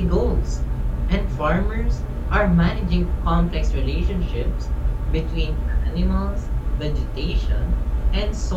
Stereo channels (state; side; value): identical; both; correlation 1.00